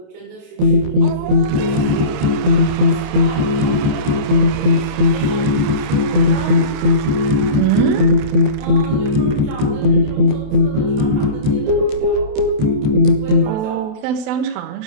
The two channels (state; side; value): late; left; 28 ms